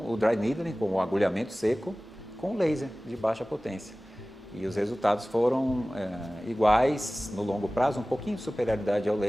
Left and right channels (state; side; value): normal; both; correlation 0.98